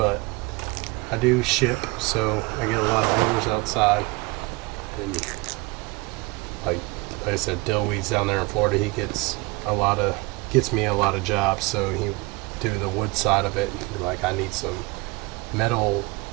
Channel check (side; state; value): left; quieter; 24.2 dB